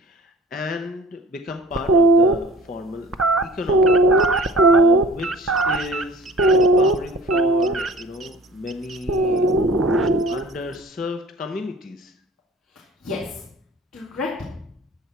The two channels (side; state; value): both; normal; correlation 0.46